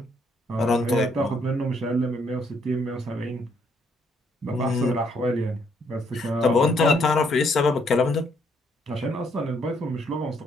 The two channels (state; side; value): normal; both; correlation 0.70